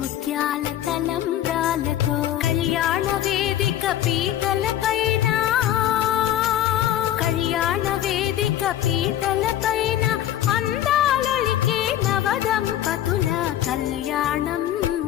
తలంబ్రాలతో కళ్యాణ వేదిక పీటలపైన కళ్యాణ వేదిక పీటలపైన అందాలొలికే నవదంపతుల కళ్యాణం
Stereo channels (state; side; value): quieter; right; 12.0 dB